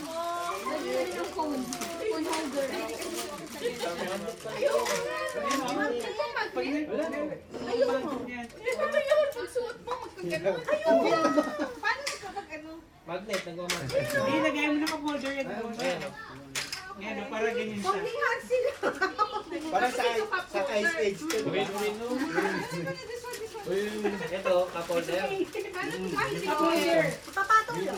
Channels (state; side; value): identical; both; correlation 1.00